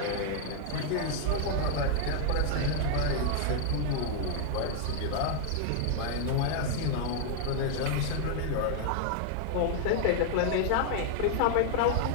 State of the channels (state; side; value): different; both; correlation 0.00